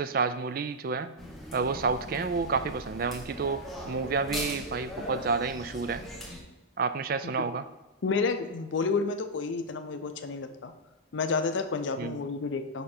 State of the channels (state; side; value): normal; both; correlation -0.06